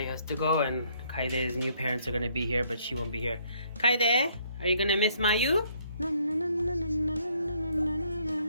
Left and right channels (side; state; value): both; inverted; correlation -0.66